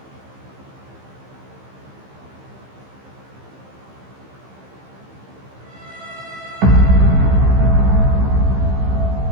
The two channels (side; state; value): left; late; 15 ms